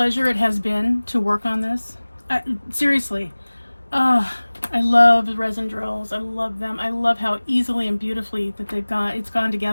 it has been to work on this? Seriously, I love the resin drills. I love them. I love how easily and beautifully that it's gone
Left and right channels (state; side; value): inverted; both; correlation -1.00